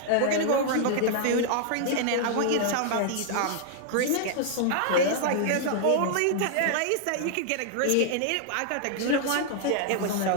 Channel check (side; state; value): both; different; correlation -0.01